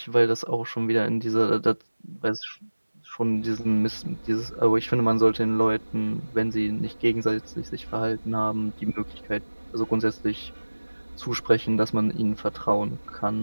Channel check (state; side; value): inverted; both; correlation -1.00